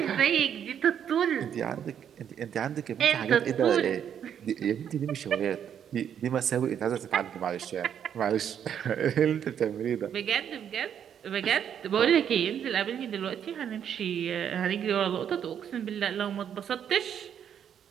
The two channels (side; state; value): left; quieter; 8.8 dB